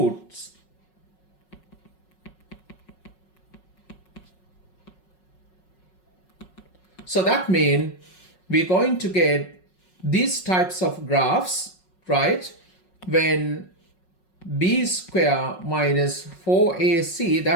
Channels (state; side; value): late; right; 5.4 ms